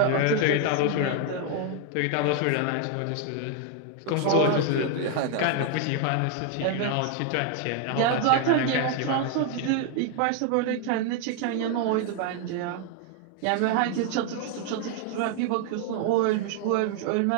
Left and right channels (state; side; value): different; both; correlation 0.00